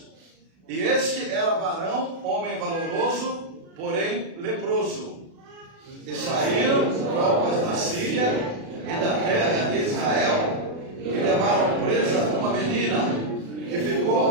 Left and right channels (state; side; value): late; left; 36 ms